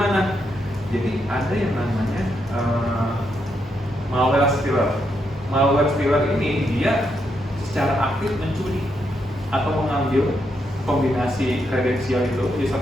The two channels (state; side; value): normal; both; correlation 0.80